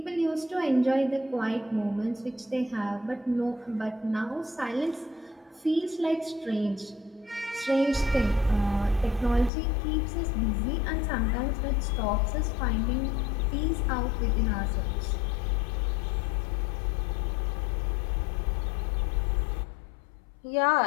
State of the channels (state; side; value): drops out; right; at 9.5 s